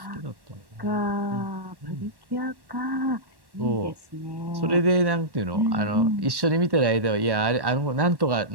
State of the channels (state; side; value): late; left; 1.1 ms